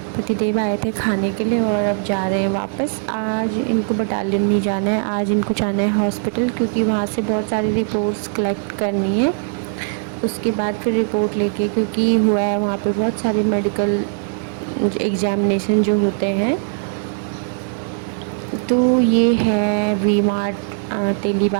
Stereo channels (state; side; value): silent; left; 62 dB below the other